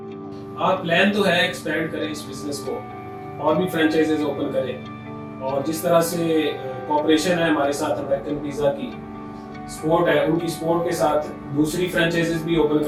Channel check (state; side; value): identical; both; correlation 1.00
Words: आप प्लान तो है एक्सपेंड करें इस बिजनेस को और भी फ्रेंचाइजेज ओपन करें, और जिस तरह से कोऑपरेशन है हमारे साथ अमेरिकन पिज़्ज़ा की सपोर्ट है, उनकी सपोर्ट के साथ दूसरी फ्रेंचाइजेज भी ओपन